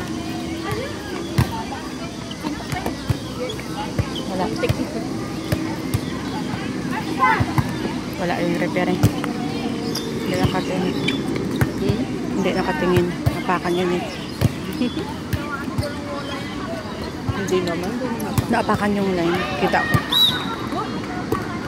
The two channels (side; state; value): both; identical; correlation 1.00